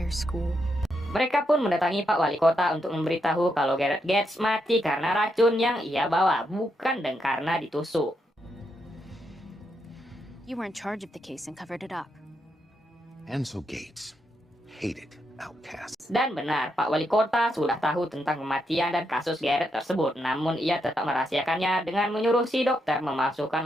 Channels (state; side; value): normal; both; correlation 0.81